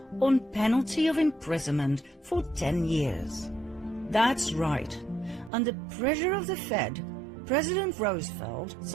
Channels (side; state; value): left; drops out; at 5.5 s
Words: on penalty of imprisonment for 10 years. That's right. Under pressure of the Fed, President Roosevelt